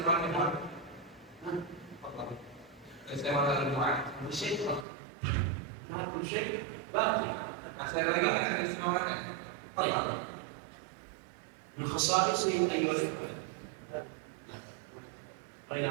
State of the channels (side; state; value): left; drops out; at 4.9 s